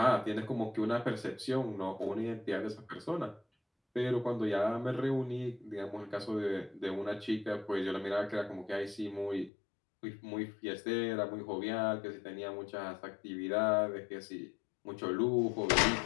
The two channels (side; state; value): right; drops out; at 9.5 s